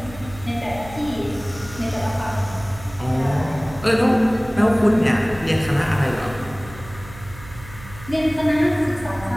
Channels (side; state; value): right; noise; hum, 16 dB below the sound